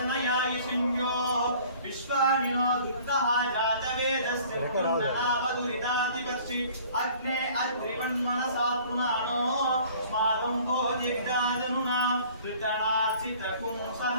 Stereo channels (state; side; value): inverted; both; correlation -0.51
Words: सिंह्योः विश्वानि नो दुर्गः जातवेदस्य नावदुरितातिवर्षि। अग्ने अद्रिवन्मनसा पुराणो स्मादं भोज्यविदादनुना ऋतनार्चितकुं